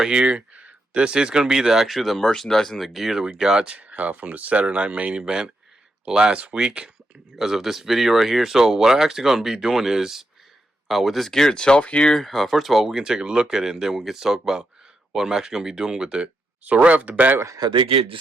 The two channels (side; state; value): both; normal; correlation 0.83